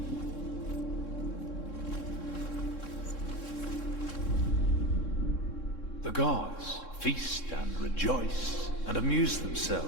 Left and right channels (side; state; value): right; late; 3.7 ms